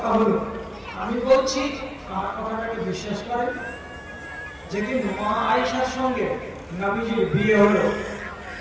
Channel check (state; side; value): identical; both; correlation 1.00